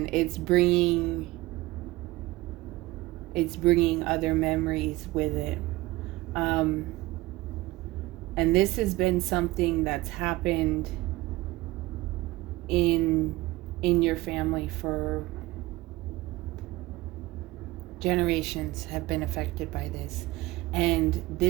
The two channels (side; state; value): left; quieter; 19.5 dB